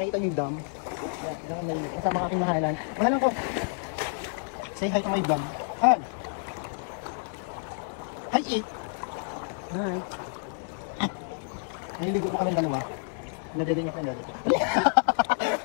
niyo yung dam? Yan, yan may kasama aking mahalan. Mahalan ko! Say hi to my vlog. Hi! Hi, It! Hi! Naliligo po kami dalawa. Nadedeng ako yung dalawa.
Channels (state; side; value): silent; right; 59 dB below the other